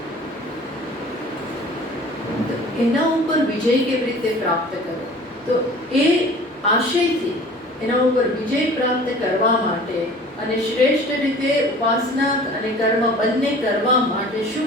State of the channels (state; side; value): normal; both; correlation 0.45